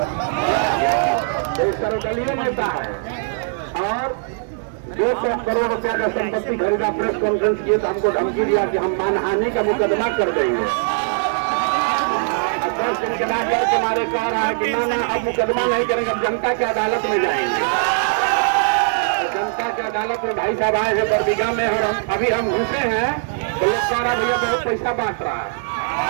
एक सर्वदलीय नेता है और 200 करोड़ रुपया का संपत्ति खरीदा। प्रेस कॉन्फ्रेंस किए तो हमको धमकी दिया कि हम मानहानि का मुकदमा कर देंगे। 10 दिन के बाद तुम्हारे कह रहा है कि ना अब मुकदमा नहीं करेंगे, अब जनता की अदालत में जाएंगे। जनता की अदालत में भाई साहब आए हैं बरबीघा में और हम घुसे हैं तो लोग कह रहा भैया बहुत पैसा बांट रहा है।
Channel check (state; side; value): silent; left; digital silence